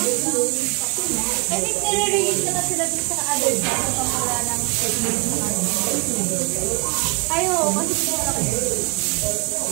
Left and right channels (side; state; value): left; quieter; 32.7 dB